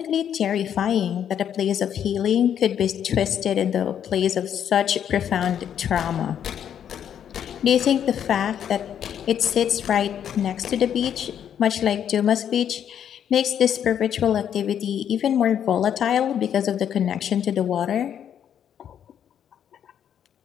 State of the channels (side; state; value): right; quieter; 9.2 dB